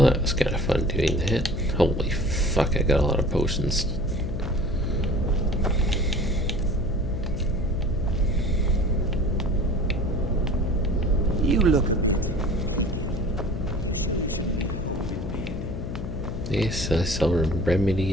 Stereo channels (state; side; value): noise; left; hum, 6 dB below the sound